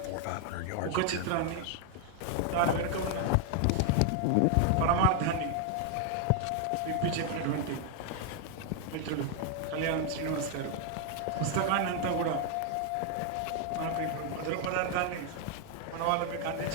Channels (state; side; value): different; both; correlation 0.01